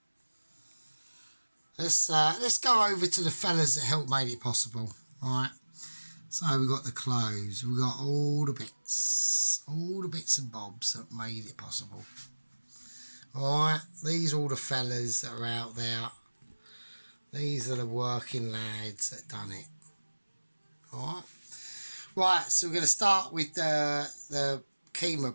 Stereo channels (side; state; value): both; inverted; correlation -1.00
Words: let's go over to the fellas that helped make it possible. Alright, so we got the clothes, we got all the bits and bobs that made it possible. Alright, these are all the fellas that are out there. These are the working lads that done it. Alright, right, so we're going to start with the